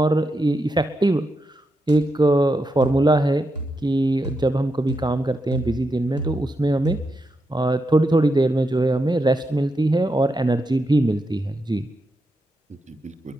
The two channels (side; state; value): both; normal; correlation 0.85